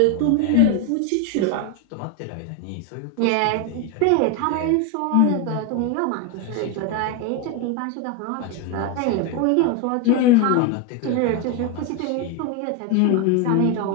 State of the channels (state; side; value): different; both; correlation 0.02